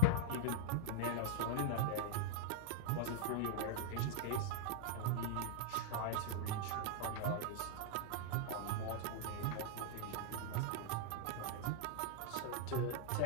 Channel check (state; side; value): different; both; correlation -0.02